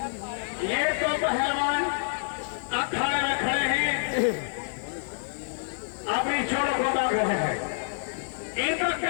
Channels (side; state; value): right; silent; 56 dB below the other